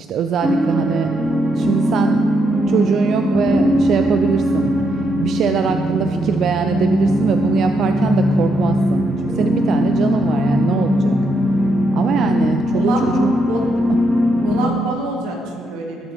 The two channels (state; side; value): normal; both; correlation 0.79